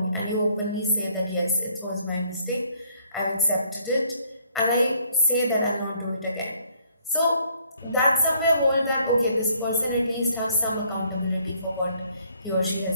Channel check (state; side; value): inverted; both; correlation -0.65